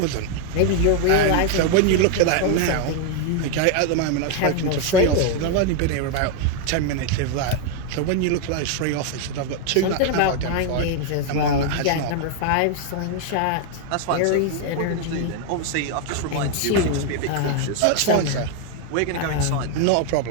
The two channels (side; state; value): both; different; correlation 0.00